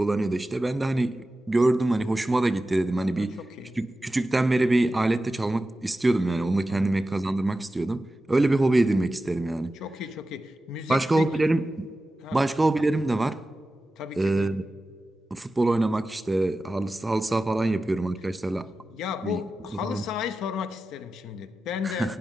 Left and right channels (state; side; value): normal; both; correlation 0.94